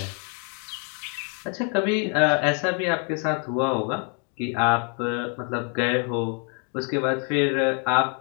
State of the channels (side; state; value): right; quieter; 39.0 dB